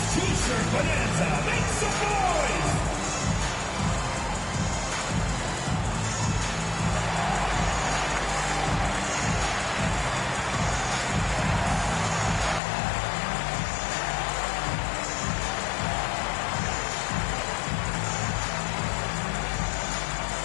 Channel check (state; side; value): drops out; right; at 12.6 s